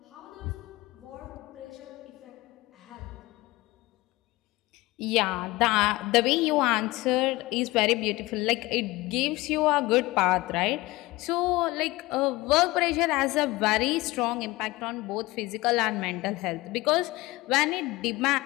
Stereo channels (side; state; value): right; quieter; 20.5 dB